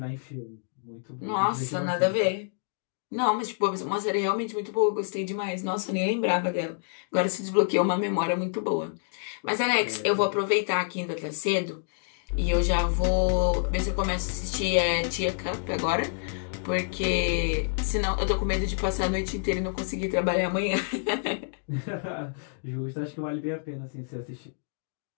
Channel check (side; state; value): right; silent; digital silence